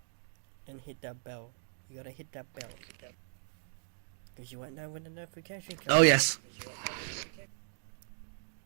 And hit that bell. You gotta hit that bell. Because you won't know when the notification comes. Oh, yes.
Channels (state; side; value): silent; left; digital silence